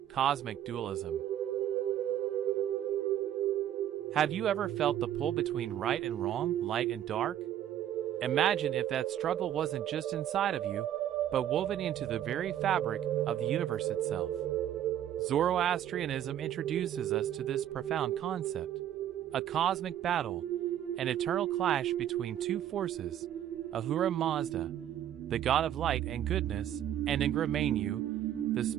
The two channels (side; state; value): left; quieter; 11.2 dB